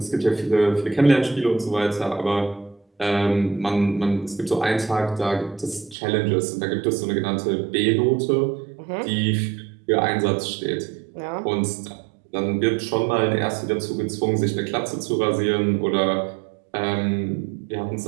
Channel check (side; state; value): left; drops out; at 6.0 s